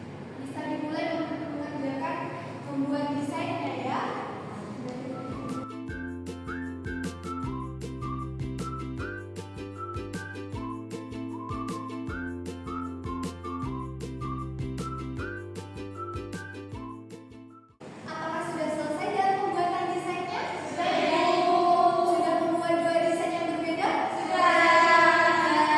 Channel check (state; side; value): identical; both; correlation 1.00